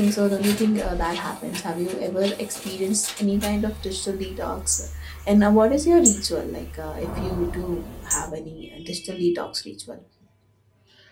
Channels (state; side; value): identical; both; correlation 1.00